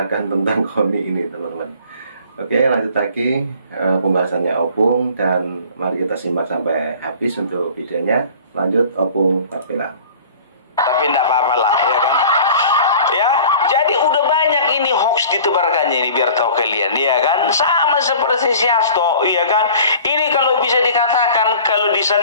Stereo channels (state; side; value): inverted; both; correlation -0.46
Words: tentang Koni ini teman-teman. Oke, lanjut lagi pembahasannya Opung, dan mari kita simak sampai habis untuk videonya. Lanjut Opung Parbela. Tapi enggak apa-apa lah, ya kan? Ya, jadi udah banyak ini hoax ditebarkannya ini, biar tahu kalian, ya kan? Sama seperti si Hasto, ya kan? Ini kalau bisa dikatakan, kalau